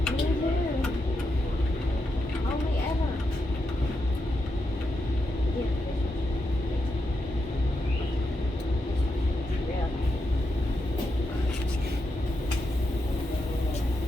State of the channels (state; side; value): normal; both; correlation 0.85